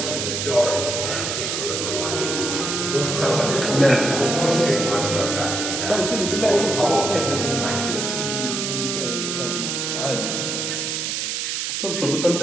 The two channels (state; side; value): noise; right; hiss, 2 dB below the sound